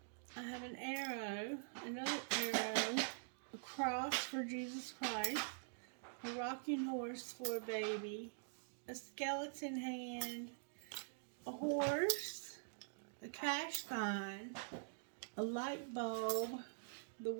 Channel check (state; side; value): silent; left; digital silence